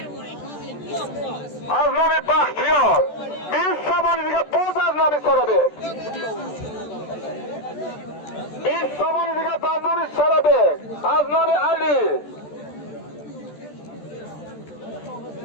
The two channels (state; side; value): late; right; 14 ms